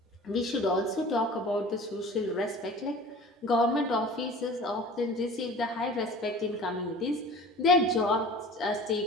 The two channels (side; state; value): both; normal; correlation 0.41